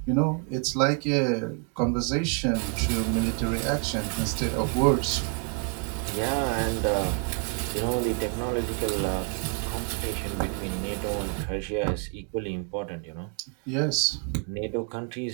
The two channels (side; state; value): left; quieter; 35.8 dB